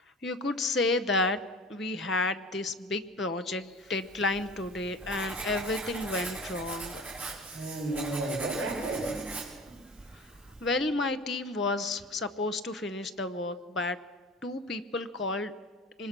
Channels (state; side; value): normal; both; correlation 0.37